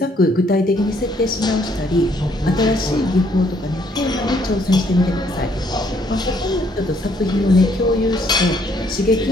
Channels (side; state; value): both; normal; correlation 0.67